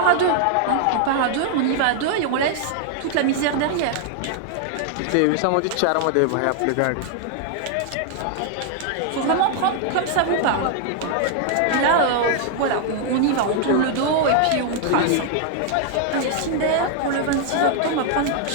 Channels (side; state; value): both; different; correlation 0.00